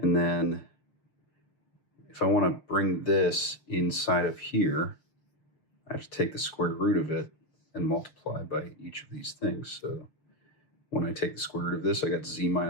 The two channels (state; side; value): late; right; 6.4 ms